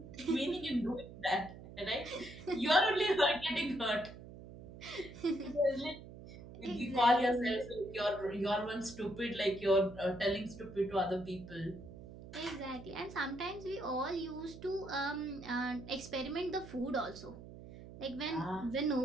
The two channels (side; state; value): right; noise; hum, 15 dB below the sound